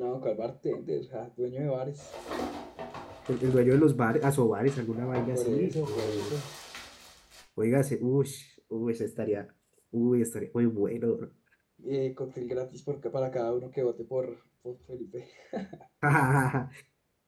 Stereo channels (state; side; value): identical; both; correlation 1.00